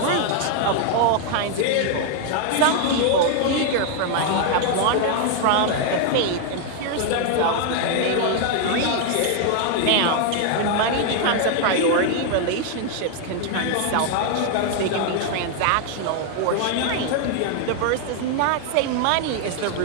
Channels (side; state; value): both; different; correlation 0.00